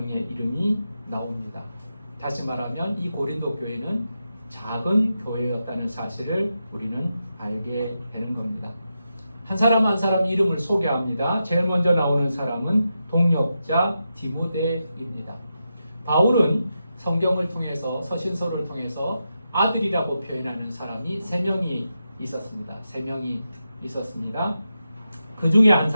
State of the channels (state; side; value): inverted; both; correlation -0.88